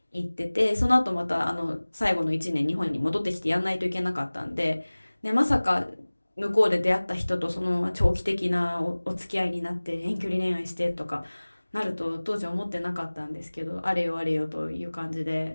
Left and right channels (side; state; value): both; inverted; correlation -1.00